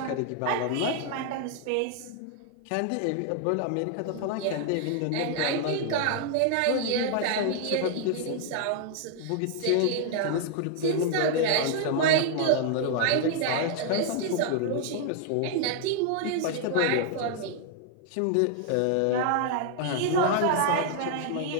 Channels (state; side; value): different; both; correlation 0.00